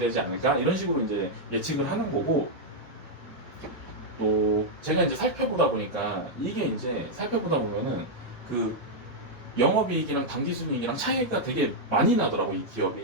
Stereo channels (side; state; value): both; normal; correlation -0.03